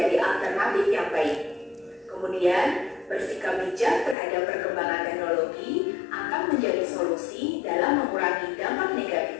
alternatif yang baik. Kemudian, bersikap bijak terhadap perkembangan teknologi akan menjadi solusi dalam mengurangi dampak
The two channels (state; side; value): drops out; right; at 4.2 s